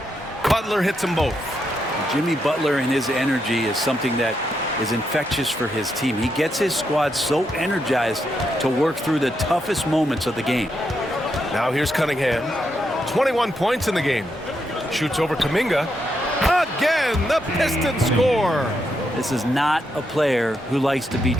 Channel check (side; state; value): both; normal; correlation 0.81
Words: Butler hits them both. Jimmy Butler and his energy is something that is infectious for his team. He gets his squad so energized to work through the toughest moments of the game. Now here's Cunningham. 21 points in the game. Shoots over Kuminga. Again, the Pistons score. This is not a player who likes to be